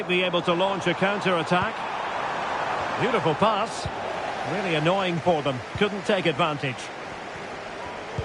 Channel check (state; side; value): identical; both; correlation 1.00